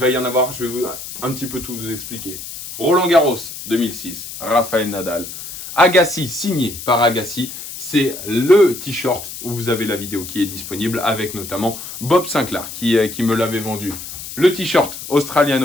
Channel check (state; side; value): noise; left; hiss, 10 dB below the sound